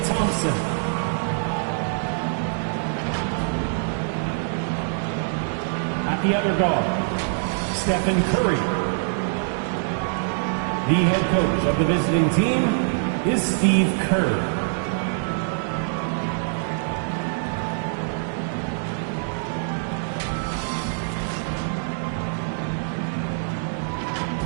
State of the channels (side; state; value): left; silent; digital silence